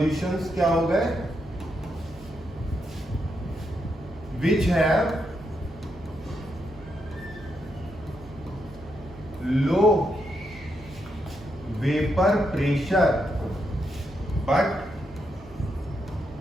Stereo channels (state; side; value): normal; both; correlation 0.81